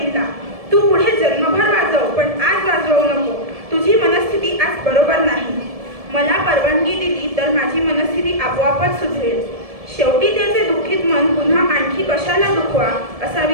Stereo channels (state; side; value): late; left; 1.7 ms